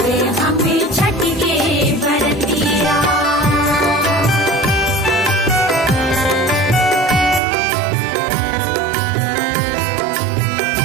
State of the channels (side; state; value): left; drops out; at 7.4 s